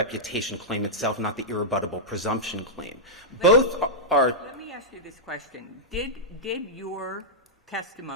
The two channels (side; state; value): both; normal; correlation -0.10